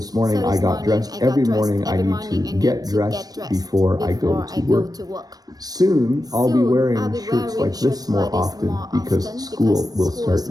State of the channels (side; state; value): left; late; 0.19 ms